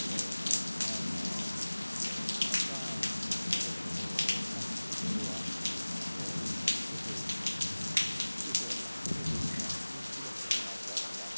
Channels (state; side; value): inverted; both; correlation -0.99